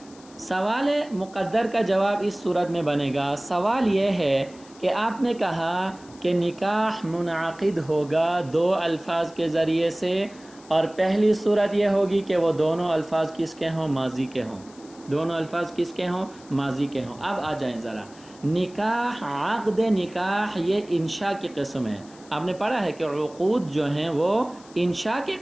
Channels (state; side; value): noise; left; hiss, 24 dB below the sound